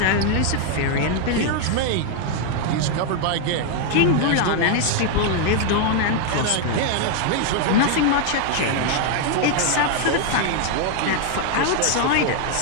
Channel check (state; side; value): different; both; correlation 0.00